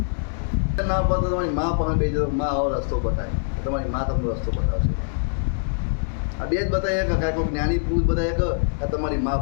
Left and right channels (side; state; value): right; silent; digital silence